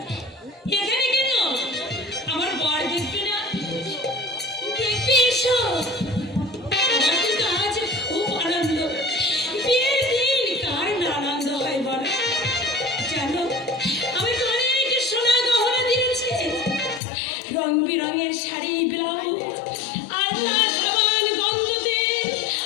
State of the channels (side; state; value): right; drops out; at 17.0 s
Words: এখানে কেন? আমার বর দেখবে না? দেখবে এসো। আমার কিন্তু আজ খুব আনন্দ। বিয়ের দিন কার না আনন্দ হয় বলো? জানো আমি অনেক সোনা গহনা দিয়েছি, রং বেরঙের শাড়ি, ব্লাউজ, আলতা, সাবান, গন্ধ তেল,